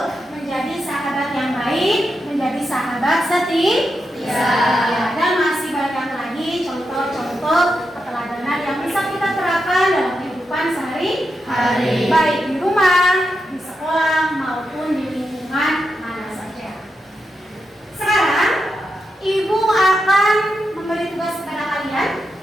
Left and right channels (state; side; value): normal; both; correlation 0.86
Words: Baik di rumah, di sekolah, maupun di lingkungan mana saja. Sekarang, Ibu akan memberi tugas kepada kalian.